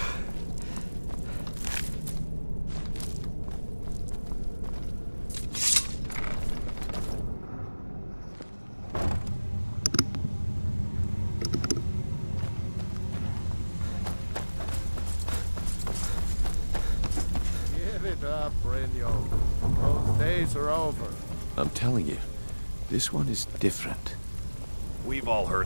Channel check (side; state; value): both; inverted; correlation -1.00